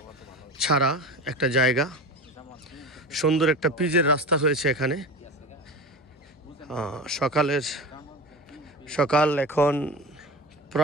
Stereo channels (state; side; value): normal; both; correlation 0.30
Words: ছাড়া একটা জায়গা। সুন্দর একটা পিচের রাস্তা হয়েছে এখানে। সকাল এখন